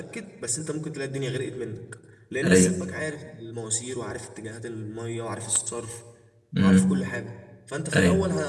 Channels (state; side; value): identical; both; correlation 1.00